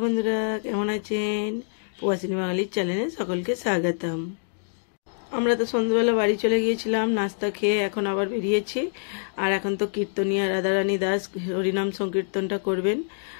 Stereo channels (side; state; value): right; silent; digital silence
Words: बंधुरा केमन आছেন প্রবাসিনী বাঙালির চ্যানেলে সকলকে স্বাগতম। আমরা তো সন্ধ্যাবেলা বাড়ি চলে গিয়েছিলাম নাস্তা খেয়ে, এখন আবার বেরিয়েছি। আর এখন তো কীর্তনিয়া রাধারানী দাস হরিনাম সংকীর্তনটা করবেন,